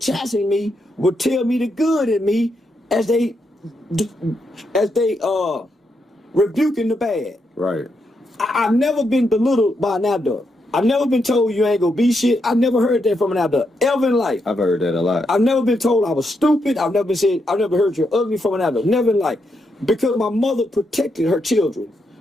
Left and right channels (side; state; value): both; normal; correlation 0.81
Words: me would tell me the good in me as they rebuking the bad. Right. I've never been belittled by an adult. I've never been told you ain't gonna be shit. I never heard that from an adult ever in life. I've heard that a lot. I've never been told I was stupid. I've never heard you're ugly from an adult. Never in life. Because my mother protected her children.